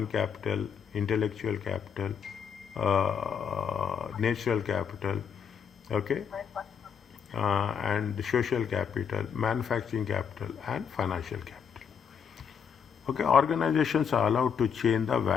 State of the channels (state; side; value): quieter; right; 7.1 dB